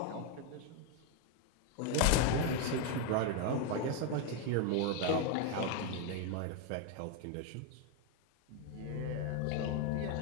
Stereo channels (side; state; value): both; different; correlation 0.01